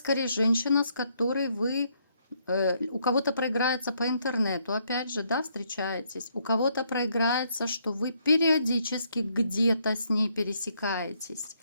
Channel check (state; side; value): inverted; both; correlation -0.73